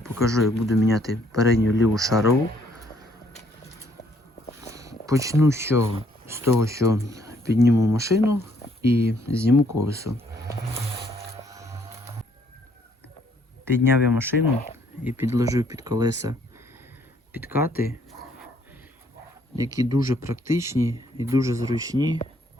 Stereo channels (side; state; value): both; normal; correlation 0.66